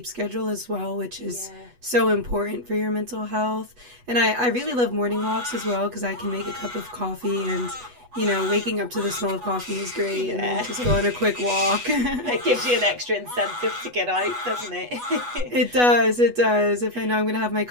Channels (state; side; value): late; left; 8.2 ms